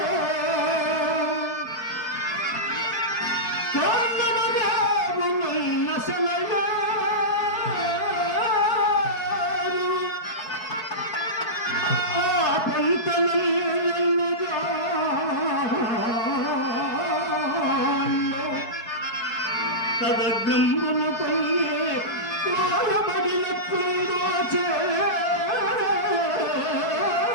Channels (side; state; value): right; late; 4.6 ms